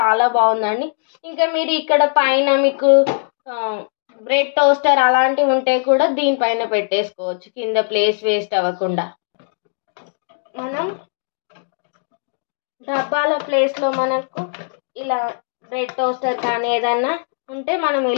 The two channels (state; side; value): silent; right; digital silence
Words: బాగుందండి. ఇంకా మీరు ఇక్కడ పైన మీకు బ్రెడ్ టోస్టర్ అలాంటివి ఉంటే కూడా దీనిపైన పెట్టేసుకోవచ్చు, కింద ప్లేస్ వేస్ట్ అవ్వకుండా. మనం డబ్బాల ప్లేస్లో మనకు ఇలా బ్రెడ్ టోస్టర్ కానీ ఏదన్నా ఉంటే మనం